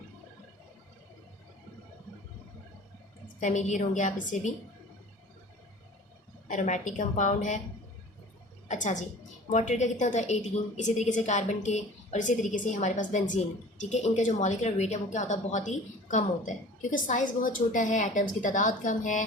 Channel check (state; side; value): normal; both; correlation 0.43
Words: फेमिलियर होंगे आप इससे भी, एरोमेटिक कंपाउंड है। अच्छा जी, वाटर का कितना होता है 18, इसी तरीके से कार्बन के, और इसी तरीके से हमारे पास बेंजीन, ठीक है। इनका जो मॉलिक्यूलर वेट है वो क्या होता है, बहुत ही कम होता है, क्योंकि साइज़ बहुत छोटा है, एटम्स की तादाद कम